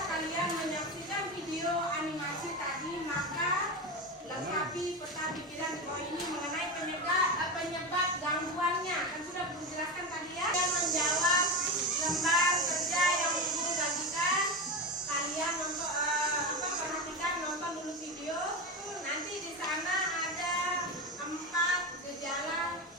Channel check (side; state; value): both; normal; correlation 0.19